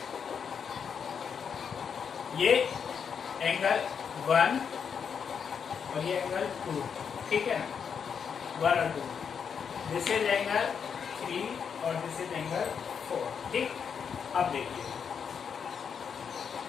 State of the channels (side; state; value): right; quieter; 6.9 dB